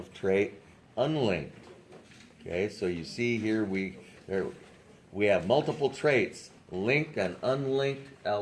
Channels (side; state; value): both; identical; correlation 1.00